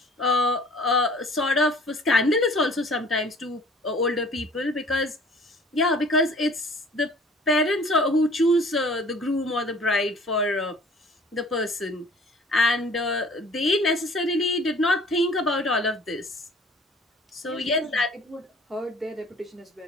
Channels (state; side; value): normal; both; correlation 0.50